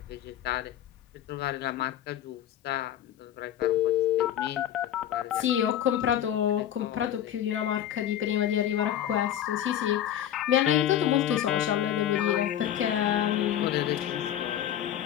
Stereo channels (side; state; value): right; quieter; 11.1 dB